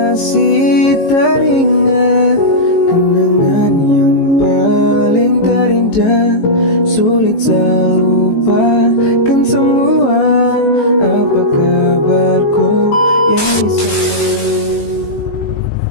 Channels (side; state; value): right; late; 18 ms